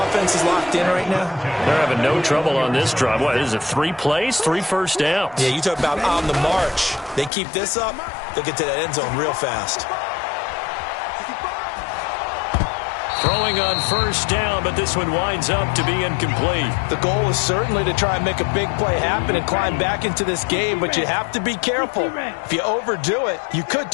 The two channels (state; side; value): drops out; right; at 7.3 s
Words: is locked in right now? They're having no trouble on this drive. What, is it 3 plays, 3 first downs? Yeah, you talk about on the march. They keep this up, they'll get to that end zone real fast. Throwing on first down, but this one winds up to be incomplete. The goal is certainly to try and make a big play happen and climb back into this game, but you have to be careful. If you overdo it, you could